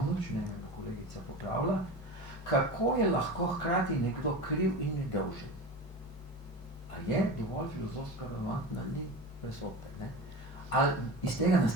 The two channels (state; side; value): normal; both; correlation 0.29